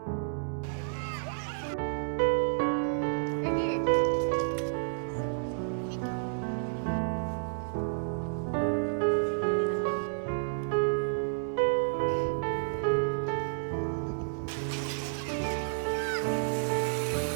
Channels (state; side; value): silent; left; 57 dB below the other